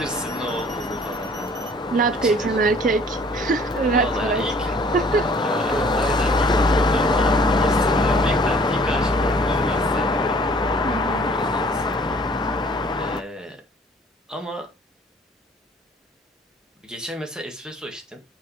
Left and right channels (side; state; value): both; normal; correlation 0.55